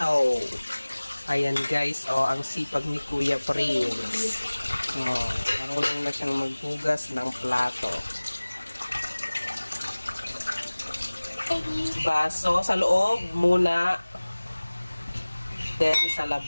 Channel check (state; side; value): inverted; both; correlation -1.00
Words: Ayan guys, ang sipag ni Kuya Prince. Marunong na siyang maghugas ng plato. Baso sa loob muna. Then sa